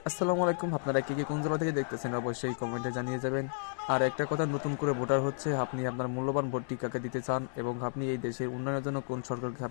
আসসালামু আলাইকুম। আপনারা কি কোন জেলা থেকে দেখতেছেন অবশ্যই কমেন্টে জানিয়ে যাবেন। আর একটা কথা, নতুন করে ভোটার হচ্ছে, আপনি আপনার মূল্যবান ভোটটি কাকে দিতে চান এবং আপনি এই দেশের উন্নয়নের জন্য কোন সরকারকে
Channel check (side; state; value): right; silent; digital silence